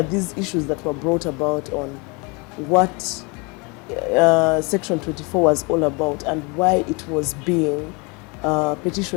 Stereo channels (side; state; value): right; quieter; 29.5 dB